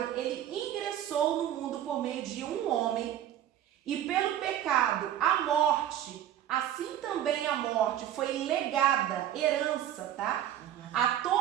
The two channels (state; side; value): quieter; left; 11.5 dB